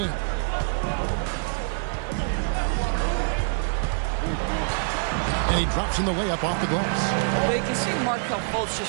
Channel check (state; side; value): silent; left; digital silence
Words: And he drops in the layup off the glass. Well, you can see Markelle Fultz